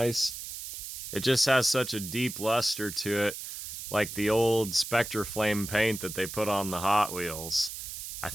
it just has such a deep luster to it, like the old Spectre Flame paint that they put on the Hot Wheels. I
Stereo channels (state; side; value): noise; right; hiss, 8 dB below the sound